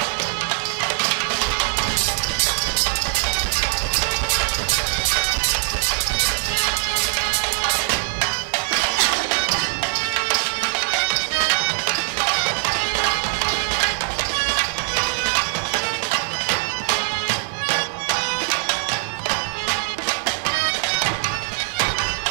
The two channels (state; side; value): silent; left; digital silence